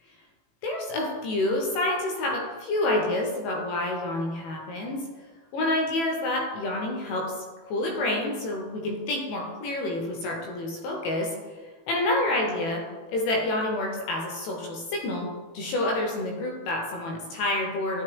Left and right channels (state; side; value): late; right; 18 ms